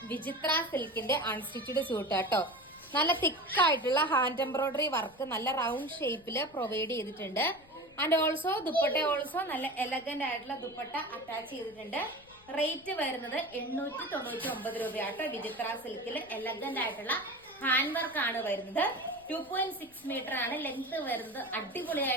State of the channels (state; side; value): noise; left; rumble, 27 dB below the sound